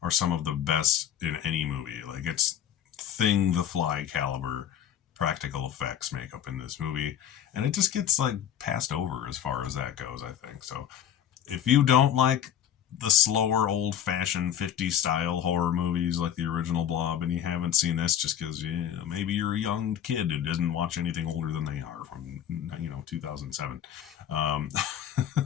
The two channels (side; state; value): right; quieter; 9.9 dB